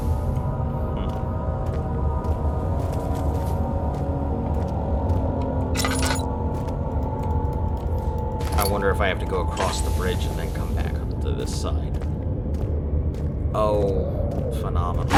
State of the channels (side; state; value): both; identical; correlation 1.00